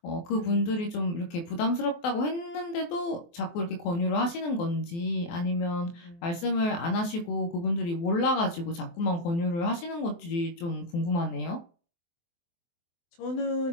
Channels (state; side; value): late; right; 23 ms